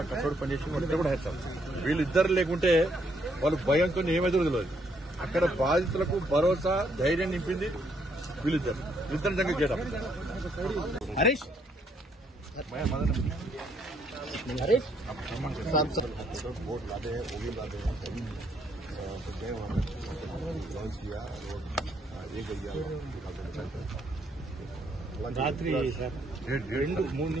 కష్టపడి పనిచేసి వాళ్ళిద్దరు కూడా హ్యాట్స్ ఆఫ్. వీళ్ళిద్దరు లేకుంటే వాళ్ళు భయంతో ఏమైతే తెలియదు. అక్కడ బాధితులకు భరోసా, ధైర్యం నింపింది వీళ్ళిద్దరు నిజంగా చేయడం. हरीश वोट लादे हैं, वो भी लादे हैं, तो गए वहाँ लॉन्च किया और ये गया रात्रि सर 2-3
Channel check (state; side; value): normal; both; correlation 0.71